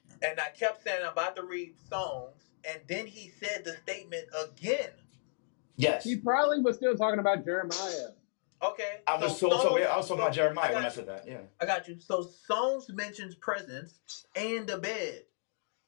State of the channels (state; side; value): silent; right; digital silence